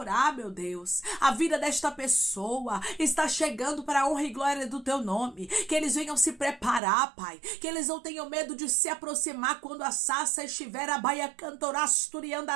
meu Deus, a vida desta pessoa está chegando para a honra e glória do teu nome. Que eles venham se preparar, Pai, que eles não tenham medo de se aproximar quando a sarça estiver a baia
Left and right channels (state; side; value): drops out; left; at 6.8 s